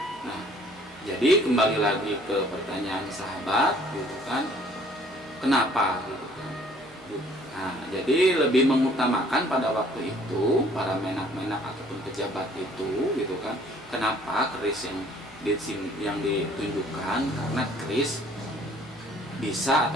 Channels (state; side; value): normal; both; correlation 0.58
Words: Nah, jadi kembali lagi ke pertanyaan sahabat, gitu kan, kenapa, gitu kan. Nah, jadi lebih mengutamakan pada waktu itu para menak-menak ataupun pejabat itu, gitu kan, kenapa keris yang ditunjukkan, karena keris bisa